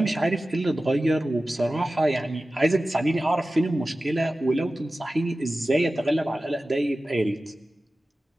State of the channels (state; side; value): normal; both; correlation 0.95